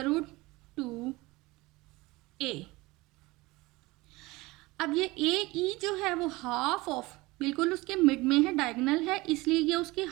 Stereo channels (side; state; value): left; quieter; 21.6 dB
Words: root 2A। अब ये AE जो है वो हाफ ऑफ, बिल्कुल उसके मिड में है, डायगोनल है, इसलिए ये उसके